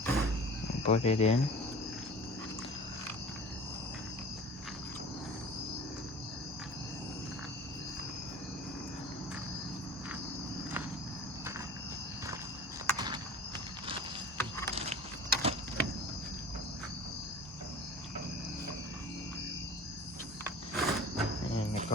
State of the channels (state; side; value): normal; both; correlation 0.41